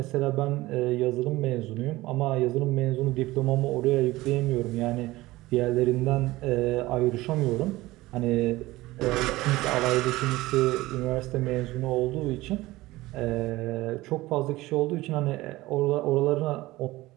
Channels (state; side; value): quieter; left; 18.7 dB